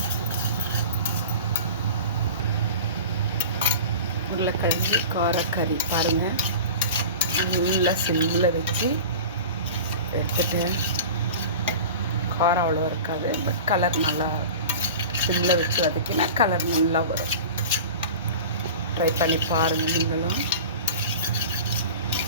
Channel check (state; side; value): inverted; both; correlation -0.35